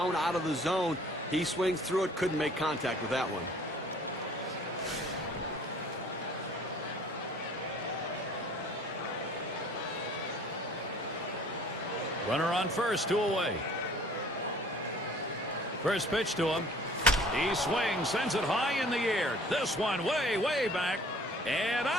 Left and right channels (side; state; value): both; normal; correlation 0.52